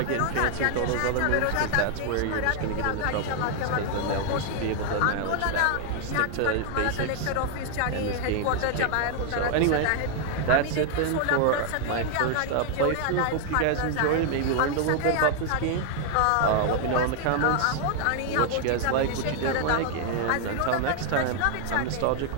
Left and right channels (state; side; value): different; both; correlation 0.00